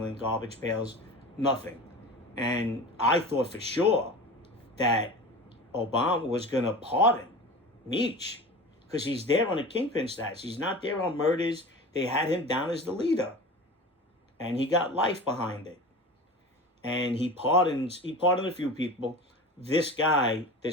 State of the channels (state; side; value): normal; both; correlation 0.34